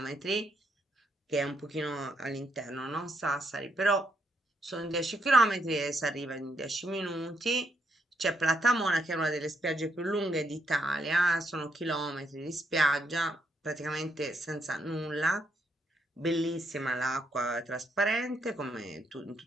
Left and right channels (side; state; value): both; normal; correlation 0.77